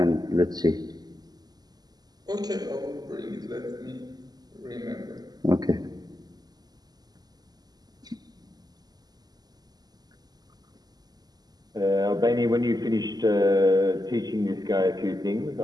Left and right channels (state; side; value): late; left; 0.20 ms